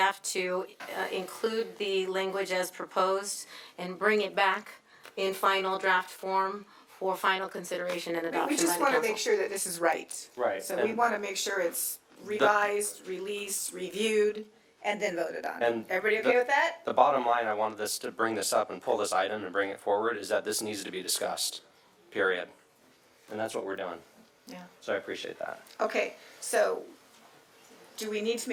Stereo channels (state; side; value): identical; both; correlation 1.00